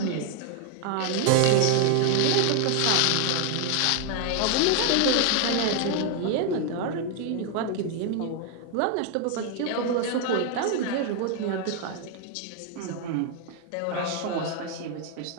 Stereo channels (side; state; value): both; different; correlation 0.00